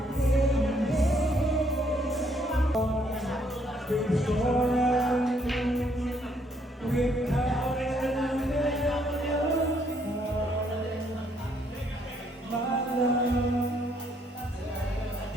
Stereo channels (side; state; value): both; normal; correlation 0.69